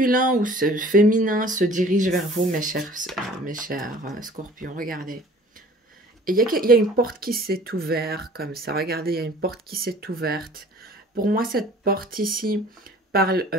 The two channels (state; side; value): normal; both; correlation 0.49